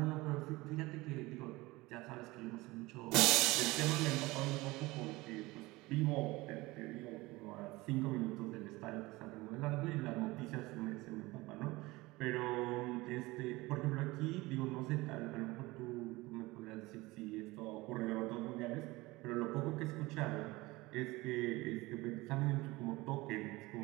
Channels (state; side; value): quieter; left; 21.2 dB